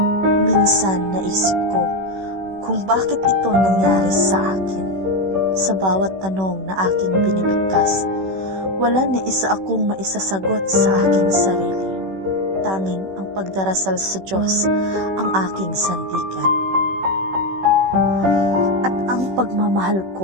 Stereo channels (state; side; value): late; left; 16 ms